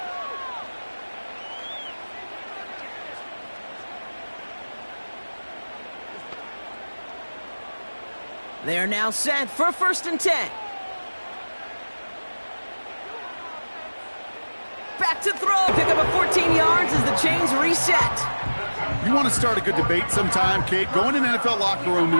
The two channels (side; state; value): both; inverted; correlation -1.00